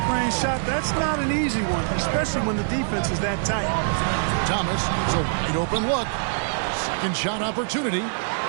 range shot, that's not an easy one, especially when the defense is that tight. Thomas, it's a wide-open look. Second shot opportunity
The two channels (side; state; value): left; silent; 63 dB below the other